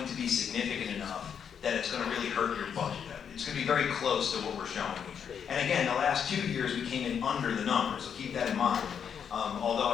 to be significant enough that it's going to really hurt your budget. It's going to be very close to what we're showing here. And again, the last 2 years we came in under the number, so keep that in mind. Although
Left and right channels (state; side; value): quieter; right; 7.7 dB